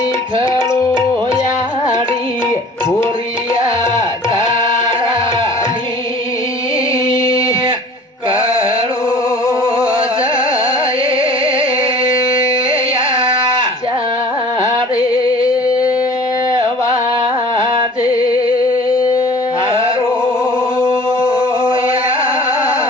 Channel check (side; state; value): both; normal; correlation 0.46